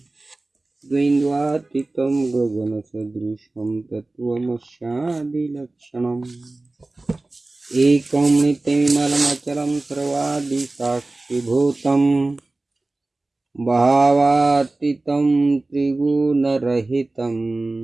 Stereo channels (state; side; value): quieter; left; 3.0 dB